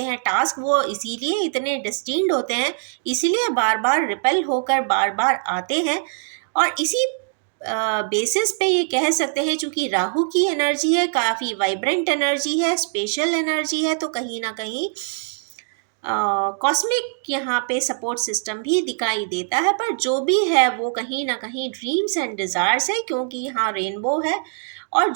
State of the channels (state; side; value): silent; left; digital silence